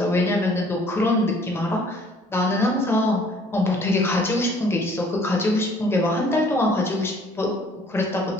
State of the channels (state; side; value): normal; both; correlation 0.57